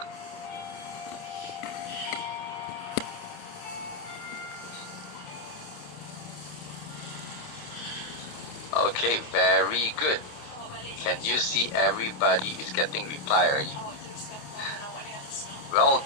Okay, very good. Can you see everybody is getting reply already? Well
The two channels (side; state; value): right; late; 28 ms